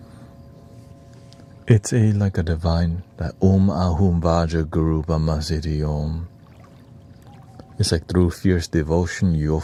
It's like a divine that Ahum Vaja Guru Brahmasiti Om. It's like through fierce devotion you'll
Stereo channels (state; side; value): identical; both; correlation 1.00